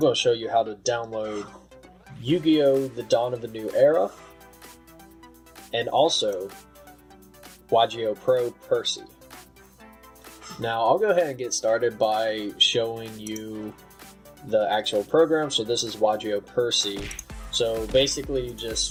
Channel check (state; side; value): identical; both; correlation 1.00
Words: to show you how to download Yu-Gi-Oh! The Dawn of a New Era, and also YGOPRO Percy. Now, I'll go ahead and get started by showing you the actual program. So this is YGO Percy. So basically, you